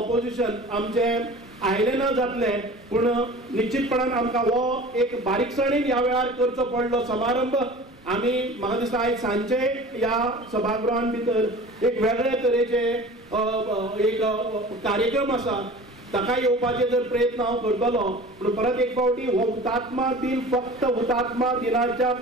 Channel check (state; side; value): normal; both; correlation 0.40